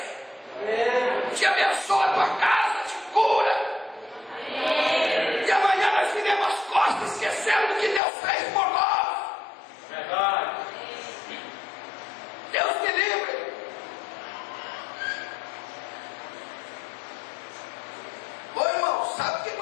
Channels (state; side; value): drops out; right; at 8.0 s